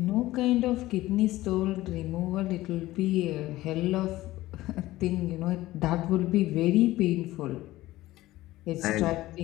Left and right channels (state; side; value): quieter; right; 16.9 dB